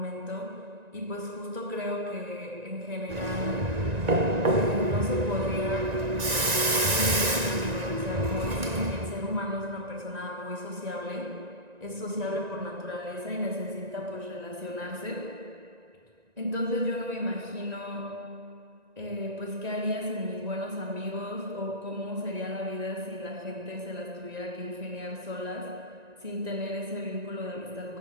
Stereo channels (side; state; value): left; late; 1.9 ms